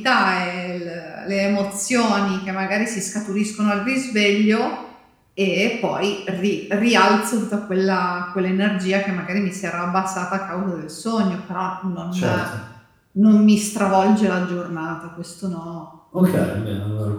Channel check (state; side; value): identical; both; correlation 1.00